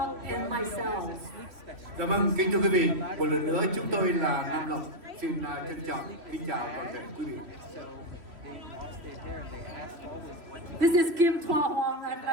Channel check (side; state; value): left; late; 3.1 ms